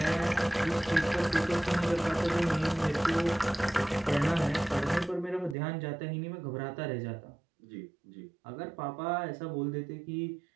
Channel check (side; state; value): left; drops out; at 5.6 s